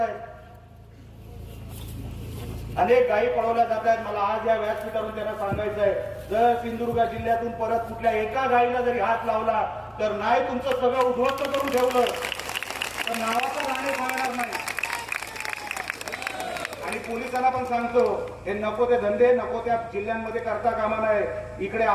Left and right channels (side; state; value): both; identical; correlation 1.00